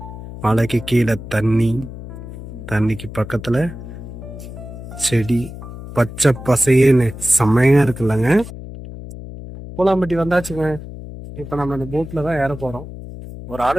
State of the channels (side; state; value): left; noise; hum, 12 dB below the sound